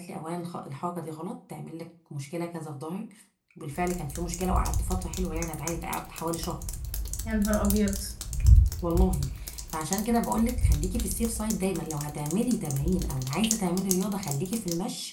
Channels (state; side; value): identical; both; correlation 1.00